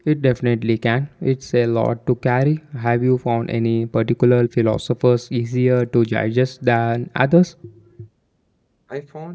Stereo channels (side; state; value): both; identical; correlation 1.00